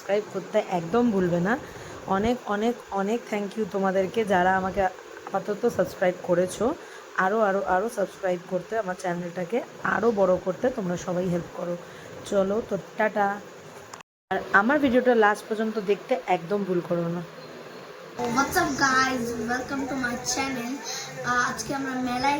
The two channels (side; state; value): both; identical; correlation 1.00